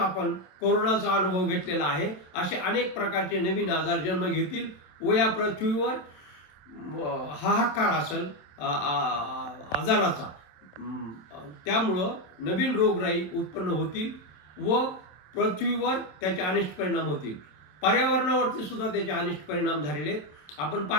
कोरोनाचा अनुभव घेतलेला आहे. असे अनेक प्रकारचे नवीन आजार जन्म घेतील व या पृथ्वीवर हाहाकार असेल आजाराचा. त्यामुळं नवीन रोगराई उत्पन्न होतील व पृथ्वीवर त्याचे अनिष्ट परिणाम होतील. पर्यावरणावरती सुद्धा त्याचे अनिष्ट परिणाम झालेले आहेत. आपण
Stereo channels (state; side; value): late; right; 27 ms